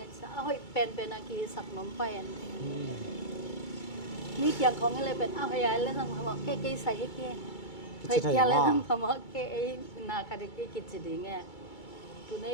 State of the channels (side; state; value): right; late; 2.3 ms